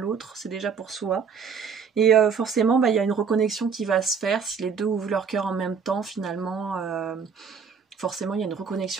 c'est déjà pour soi. Et forcément, il y a une reconnexion qui va se faire si les deux ouvrent leur cœur en même temps finalement. Forcément, il y a une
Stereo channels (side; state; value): left; quieter; 6.2 dB